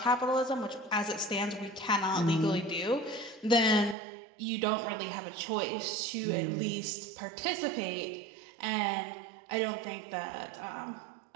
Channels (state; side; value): drops out; left; at 4.0 s